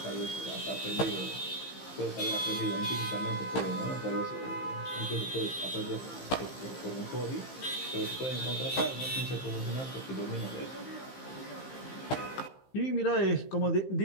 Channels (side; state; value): right; late; 15 ms